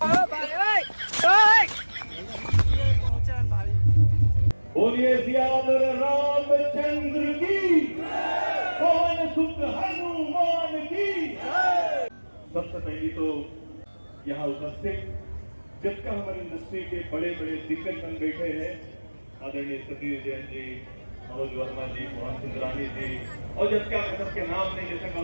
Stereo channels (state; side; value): inverted; both; correlation -1.00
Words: बोलिए सियावर रामचंद्र की, पवन सुत हनुमान की। सबसे पहली तो यहाँ उपस्थित जितना हमारी इंडस्ट्री के बड़े बड़े दिग्गजजन बैठे हैं, आदरणीय सतीश जैन जी, मनोज वर्मा जी, मोहन सुंदरानी जी, और जब क्या सबके नाम नहीं जैसे